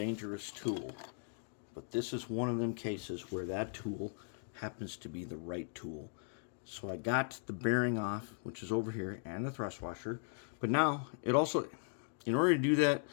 tool. But this is one of them cases where that tool happens to be the right tool. So I got the bearing off, which is over here, and the thrust washer. But now, it also, in order to do that,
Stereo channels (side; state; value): right; silent; digital silence